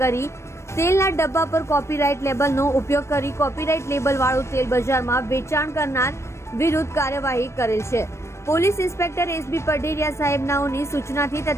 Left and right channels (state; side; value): late; right; 0.13 ms